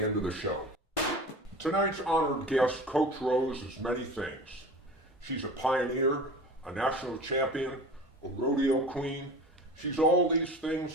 end of the show. Tonight's honored guest, Coach Rose, is many things. She's a pioneer, a national champion, a rodeo queen. She's all these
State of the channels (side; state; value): both; normal; correlation 0.37